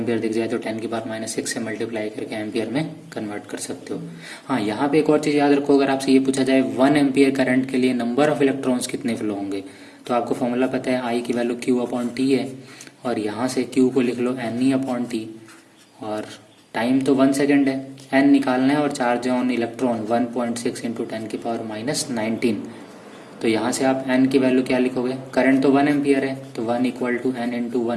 दिख जाए तो 10⁻6 से मल्टीप्लाई करके एम्पियर में कन्वर्ट कर सकते हो। हाँ, यहाँ पे एक और चीज़ याद रखो, अगर आपसे ये पूछा जाए 1 एम्पियर करंट के लिए नंबर ऑफ इलेक्ट्रॉन्स कितने फ्लो होंगे, तो आपको फॉर्मूला पता है, आई की वैल्यू Q/T है, और यहाँ से Q को लिख लो NE/T, और टाइम तो 1 सेकेंड है, N निकालना है, और चार्ज ऑन इलेक्ट्रॉन 1.6 × 10⁻19। तो यहाँ से आप n की वैल्यू क्या लिखोगे, करंट तो 1 एम्पियर है, तो 1 = n ×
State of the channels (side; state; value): both; identical; correlation 1.00